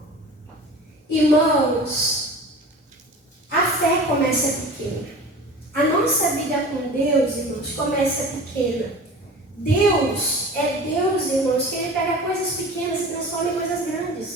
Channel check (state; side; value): normal; both; correlation 0.38